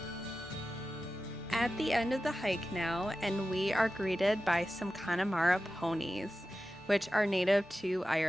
At the end of the hike now, and we are greeted by some Connemara ponies, which are native to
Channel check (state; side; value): normal; both; correlation 0.94